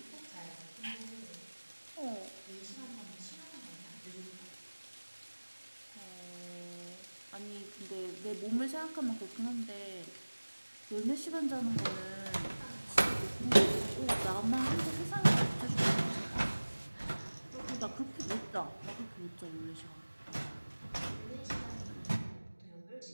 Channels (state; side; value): inverted; both; correlation -1.00